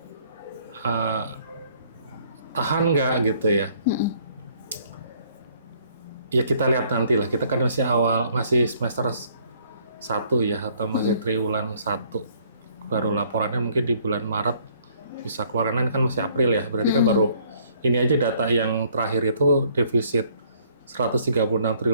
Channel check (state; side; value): inverted; both; correlation -0.63